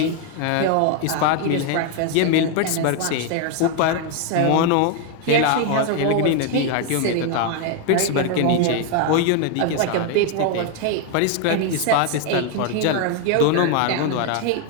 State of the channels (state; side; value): different; both; correlation 0.01